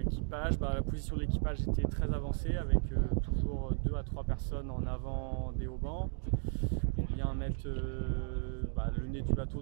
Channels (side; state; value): left; silent; 54 dB below the other